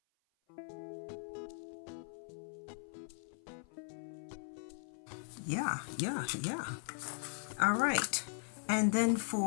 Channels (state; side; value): silent; right; 52 dB below the other